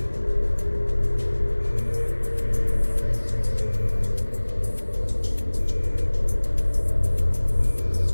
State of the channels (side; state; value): both; inverted; correlation -1.00